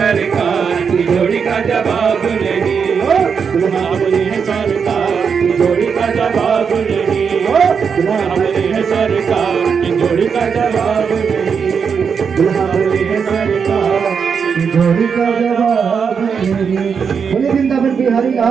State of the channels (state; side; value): quieter; left; 6.3 dB